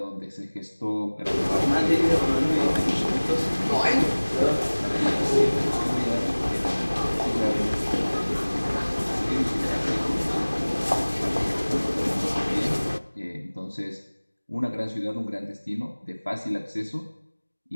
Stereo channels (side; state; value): both; inverted; correlation -1.00